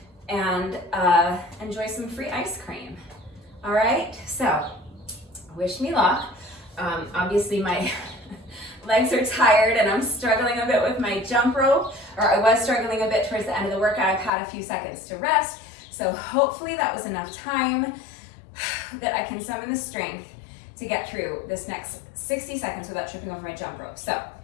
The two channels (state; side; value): drops out; right; at 14.3 s